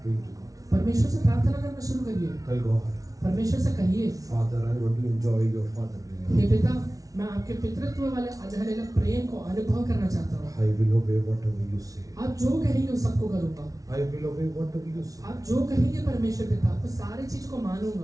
praying to God. परमेश्वर से प्रार्थना करना शुरू करिए। Tell God, परमेश्वर से कहिए, Father, I want to enjoy your fatherly love. हे पिता, मैं आपके पितृत्व वाले हालेलुया प्रेम को अनुभव करना चाहता हूँ। I will obey whatever you say. आप जो कहेंगे वो सबको करूँगा। I will obey whatever you say. आप जो कहेंगे परमेश्वर पिता, वो सारी चीज को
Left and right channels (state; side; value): late; left; 0.17 ms